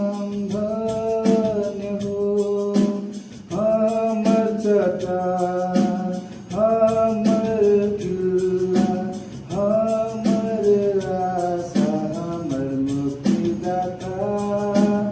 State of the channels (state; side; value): identical; both; correlation 1.00